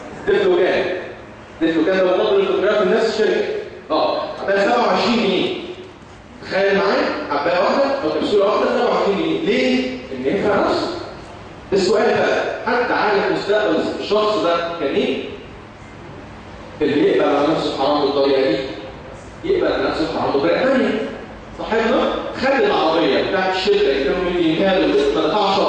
ديفلوجان. ديفلوجان ده مضاد للفوتوغراف من نفس الشركه. حبايه 27 جنيه. تخيل معايا حبايه واحده او كبسوله واحده 27 جنيه. ليه؟ ان ينفع نفسه. السؤال بقى حد عارف مستقبل الشخص ده كان ايه؟ اللي يقبل على نفسه حرام بالطريقه دي يقبل على نفسه حرام بطريقه ثانيه. صاحبنا خد العربيه بتاعت الشركه اللي كانوا مدينها له ما دفعش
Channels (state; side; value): identical; both; correlation 1.00